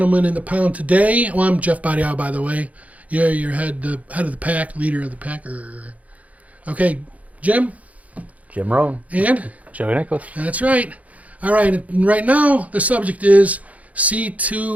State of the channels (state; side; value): late; left; 0.070 ms